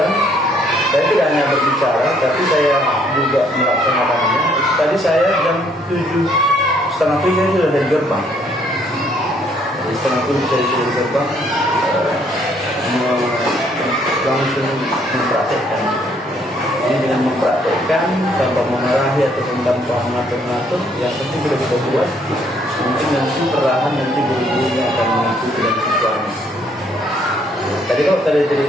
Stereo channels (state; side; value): normal; both; correlation 0.66